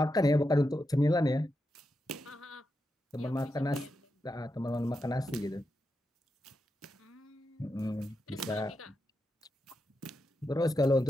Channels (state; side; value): normal; both; correlation 0.87